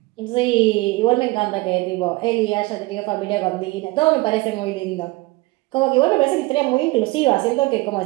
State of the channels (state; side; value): quieter; left; 22.3 dB